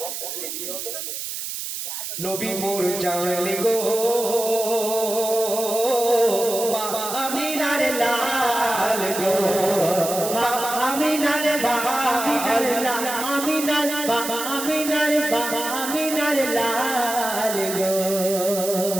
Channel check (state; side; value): noise; right; hiss, 6 dB below the sound